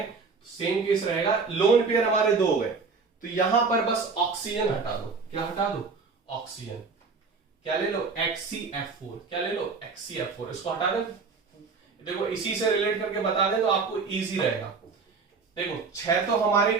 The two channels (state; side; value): quieter; left; 4.7 dB